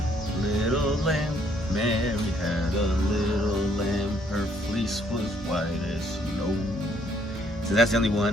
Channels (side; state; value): both; normal; correlation 0.66